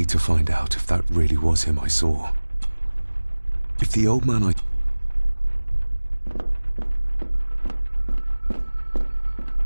to find out if that really was him I saw. If the old man I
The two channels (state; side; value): inverted; both; correlation -1.00